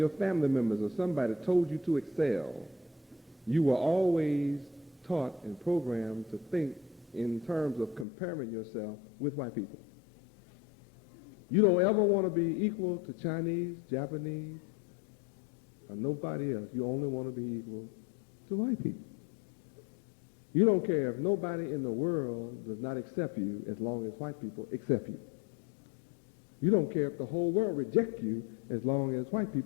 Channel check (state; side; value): drops out; right; at 8.1 s